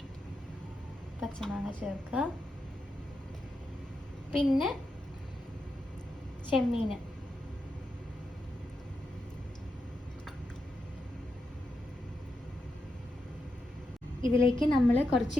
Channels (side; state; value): both; normal; correlation 0.86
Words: പച്ചമാങ്ങ ചേർക്കുക. പിന്നെ ചെമ്മീൻ, ഇതിലേക്ക് നമ്മൾ കുറച്ച്